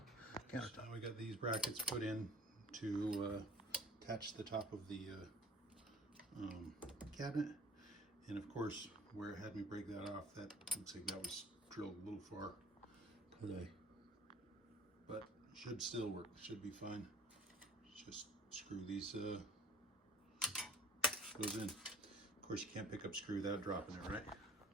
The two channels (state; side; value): normal; both; correlation 0.50